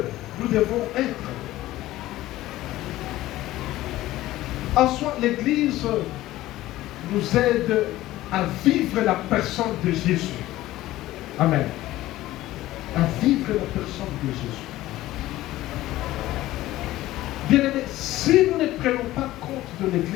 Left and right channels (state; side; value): quieter; right; 16.0 dB